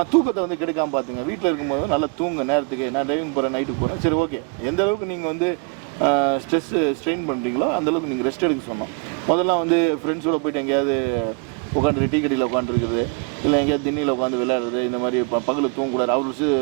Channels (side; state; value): left; quieter; 32.0 dB